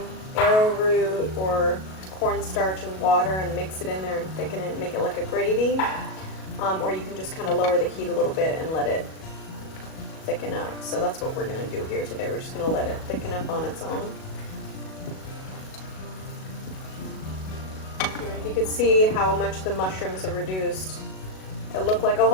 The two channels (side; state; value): right; late; 37 ms